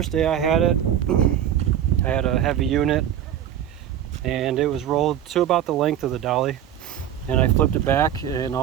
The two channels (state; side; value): quieter; left; 10.5 dB